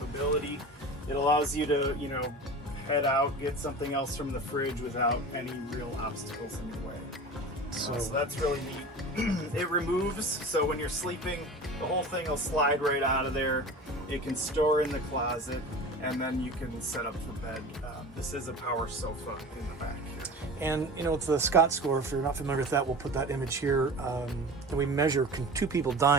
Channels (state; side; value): normal; both; correlation 0.35